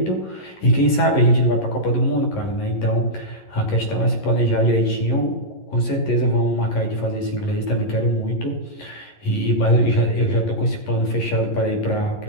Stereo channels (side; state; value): right; late; 11 ms